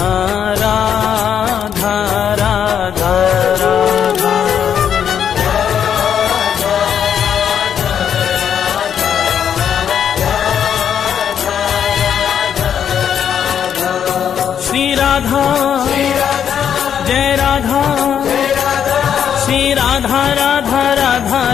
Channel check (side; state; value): right; quieter; 8.5 dB